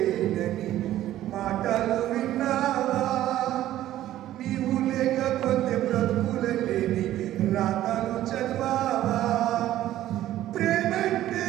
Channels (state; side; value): quieter; left; 13.5 dB